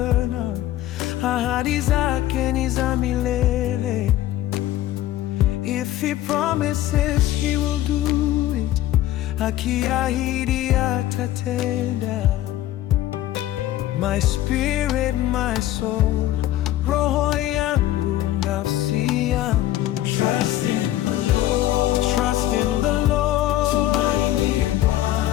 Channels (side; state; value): right; quieter; 14.1 dB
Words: Ahadi zake ni za milele. If he promises, he will do it. Akiahidi atatenda. My spirit, my soul, roho yangu, nafsi yangu. Trust in the Lord. Trust in the Lord. Tumaini